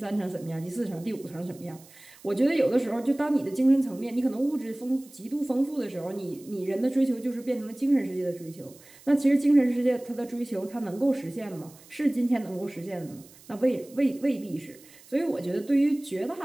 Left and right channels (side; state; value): right; noise; hiss, 23 dB below the sound